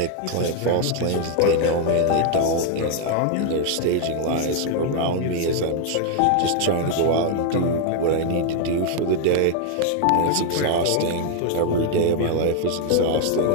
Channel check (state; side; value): different; both; correlation 0.00